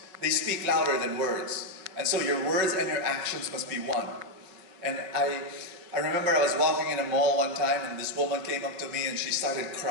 they speak louder than words. And so your words and your actions must be one. And I remember I was walking in a mall one time and this woman came up to me and she started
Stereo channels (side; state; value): left; late; 5.2 ms